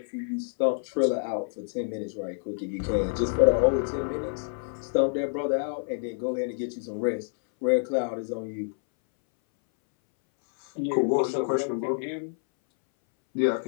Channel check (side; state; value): right; silent; 60 dB below the other